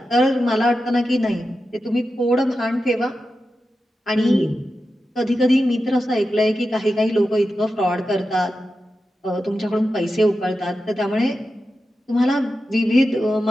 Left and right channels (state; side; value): normal; both; correlation 0.91